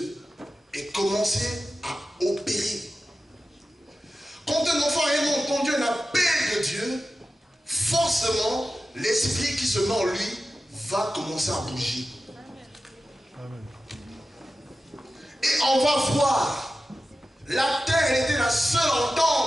et commencer à opérer. Quand un enfant a entendu un appel de Dieu, forcément, l'esprit qui se met en lui va commencer à bouger. Et on va voir La terre, elle était la seule à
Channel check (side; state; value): both; normal; correlation 0.93